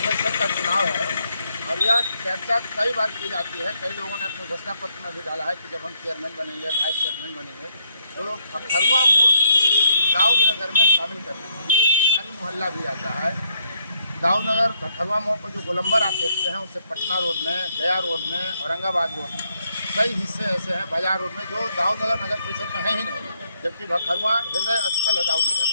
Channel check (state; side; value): inverted; both; correlation -0.74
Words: का चुनाव है और यह चर्चा कई बार की जाती है। कई लोगों ने अपने घोषणा पत्र में भी डाला है कि जब हम चेयरमैन बनेंगे, वाइस चेयरमैन बनेंगे तो खरवा मोड़ दाऊद नगर में शामिल करना है। तिवारी मोहल्ला भी आता है। दाऊद नगर खरवा मोड़ पर जो गोलंबर आप देखते हैं उससे पटना रोड में, गया रोड में, औरंगाबाद रोड में कई हिस्से ऐसे हैं, बाजार रोड में, जो दाऊद नगर परिषद में है ही नहीं, जबकि खरवा हृदय स्थल है दाऊद नगर